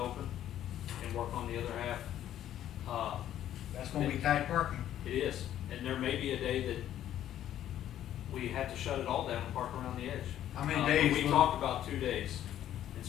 and work on the other half. That's gonna be tight parking. It is, and there may be a day that we have to shut it all down and park around the edge. How many But days We will- talked about 2 days and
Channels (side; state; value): right; quieter; 11.6 dB